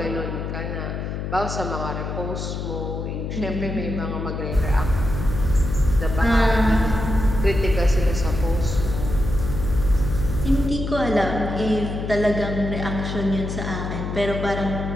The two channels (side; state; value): left; noise; hum, 4 dB below the sound